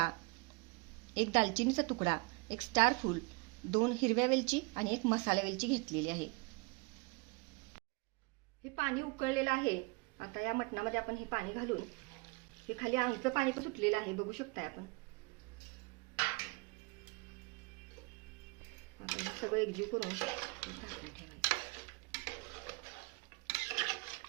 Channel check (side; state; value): left; quieter; 28.8 dB